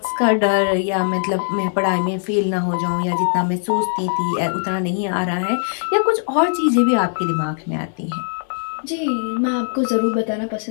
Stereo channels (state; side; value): silent; right; digital silence